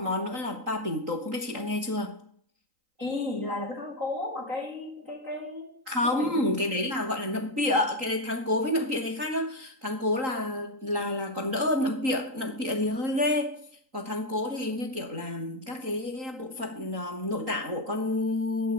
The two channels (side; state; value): left; late; 3.8 ms